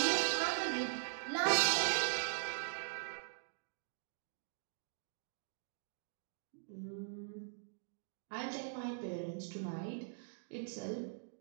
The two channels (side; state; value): left; silent; digital silence